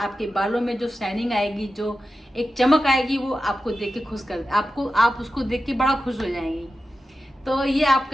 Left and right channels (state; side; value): normal; both; correlation 0.92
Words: बालों में जो शाइनिंग आएगी, जो एक चमक आएगी, वो आपको देख के आप उसको देख के बड़ा खुश हो जाएंगी। तो ये